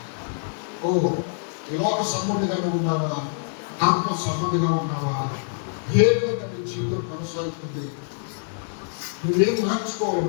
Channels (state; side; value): silent; right; 62 dB below the other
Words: లోక సంబంధిగా ఉన్నావా, ఆత్మ సంబంధిగా ఉన్నావా, ఏ విధంగా నీ జీవితం కొనసాగుతుంది, నువ్వేం